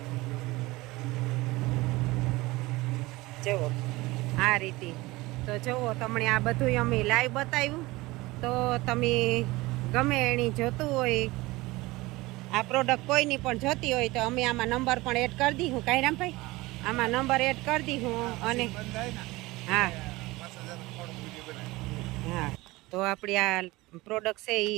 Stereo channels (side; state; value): left; quieter; 20.8 dB